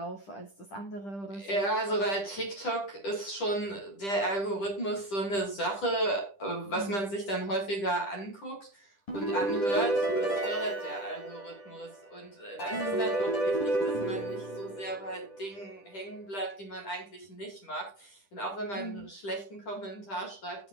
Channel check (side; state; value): right; late; 10 ms